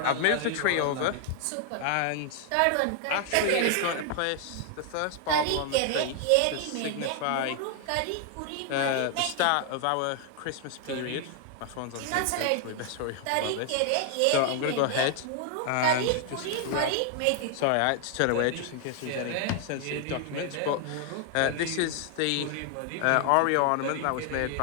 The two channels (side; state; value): both; different; correlation 0.00